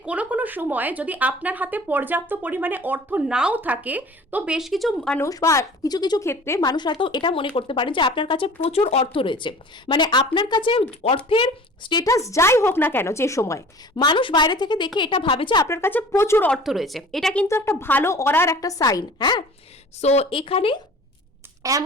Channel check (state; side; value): normal; both; correlation 0.44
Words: কোনো কোনো সময় যদি আপনার হাতে পর্যাপ্ত পরিমাণে অর্থ নাও থাকে, তো বেশ কিছু মানুষ বা কিছু কিছু ক্ষেত্রে মানুষ হয়তো এটা মনে করতে পারেন যে আপনার কাছে প্রচুর অর্থ রয়েছে। মানে আপনার কাছে অর্থের স্টেটাস যাই হোক না কেন, যে সময় মানুষ বাইরে থেকে দেখে এটা ভাবে যে আপনার কাছে প্রচুর অর্থ রয়েছে, এটা কিন্তু একটা ভালো অরার একটা সাইন, হ্যাঁ। সো এখানে